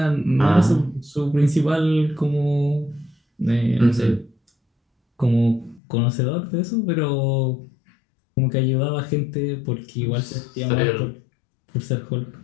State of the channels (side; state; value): right; drops out; at 5.8 s